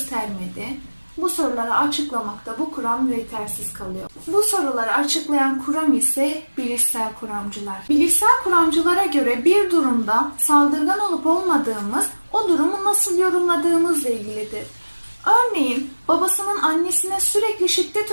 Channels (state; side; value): inverted; both; correlation -1.00